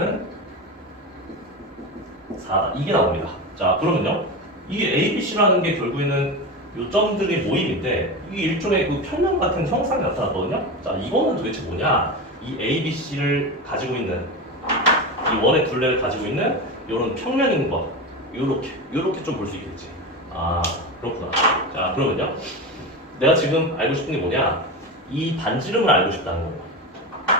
4다. 이게 나옵니다. 자, 그러면요. 이게 a, b, c라는 게 결국에는 요 점들의 모임인데 이게 일종의 그 평면 같은 형상이 나타났거든요. 자, 이거는 도대체 뭐냐? 이 a, b, c를 가지고 있는 이 원의 둘레를 가지고 있는 이런 평면인 거. 요렇게 좀 볼 수 있겠지. 아, 그렇구나. 자, 그러면요. 내가 지금 알고 싶은 게 뭐냐? 이 반지름을 알고 싶다는 거예요.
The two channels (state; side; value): normal; both; correlation 0.22